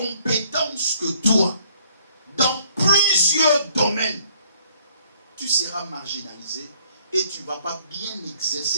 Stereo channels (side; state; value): both; inverted; correlation -0.63